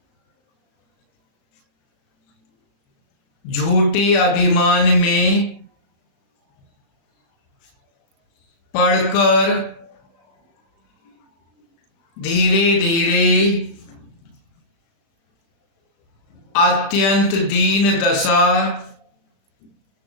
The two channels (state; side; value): late; right; 36 ms